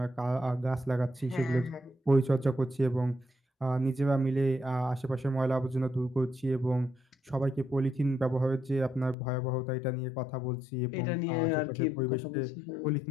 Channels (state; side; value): drops out; right; at 9.2 s